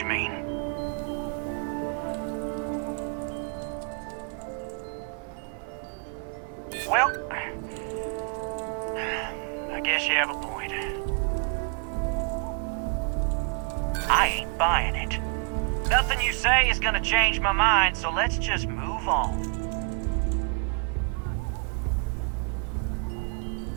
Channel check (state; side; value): quieter; left; 37.6 dB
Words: mean. Well, I guess you have a point. I ain't buying it. Nothing you say is gonna change my mind, so let's just move on.